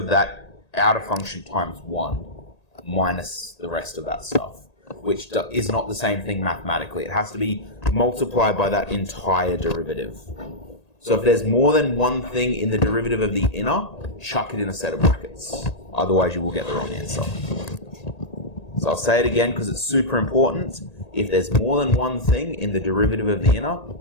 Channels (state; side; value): late; right; 1.8 ms